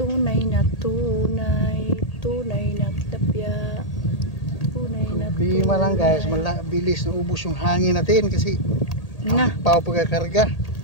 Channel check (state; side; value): late; right; 1.8 ms